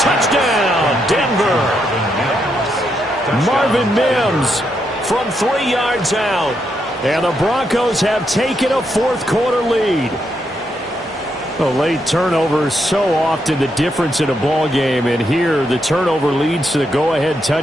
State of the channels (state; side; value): normal; both; correlation 0.80